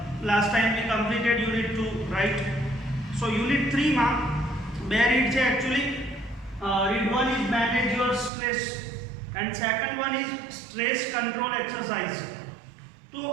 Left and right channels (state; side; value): drops out; left; at 8.3 s